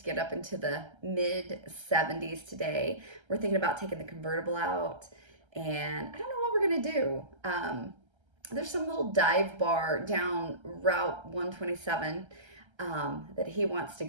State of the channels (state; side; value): late; left; 1.3 ms